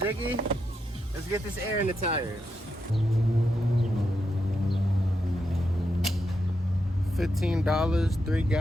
Let's get this air in the tires. 15 $3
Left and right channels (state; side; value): normal; both; correlation 0.84